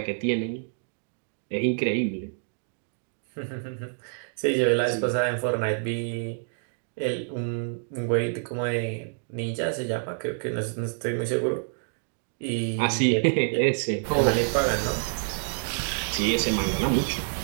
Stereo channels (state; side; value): silent; left; digital silence